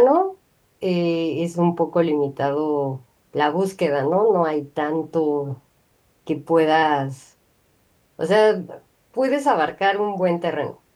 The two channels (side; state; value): both; identical; correlation 1.00